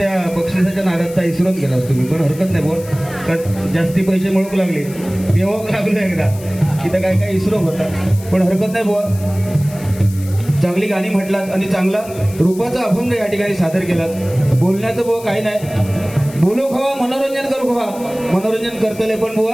बक्षिसाच्या नादात इसरून गेलास तुम्ही पण हरकत नाही बुवा कारण जास्ती पैसे मिळवू लागले पेवाक लागलो एकदा तिथं काय काय इसरो होता पण हरकत नाही बुवा चांगली गाणी म्हटलात आणि चांगला रूपाचा अभंग या ठिकाणी सादर केलात बोलण्याचं बुवा काही नाही बोलो खवा मनोरंजन करू खवा मनोरंजन करतले पण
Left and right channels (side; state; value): left; noise; hiss, 18 dB below the sound